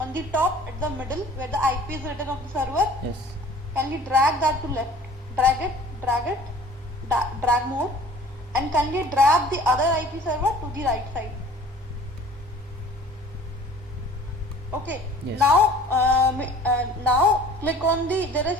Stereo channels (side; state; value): both; normal; correlation 0.48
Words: the top, at the middle, where the IP is written of the server, Yes. kindly drag that to left. Drag more, and kindly drag the other IP server to the right side. Okay. Yes. Now click on there is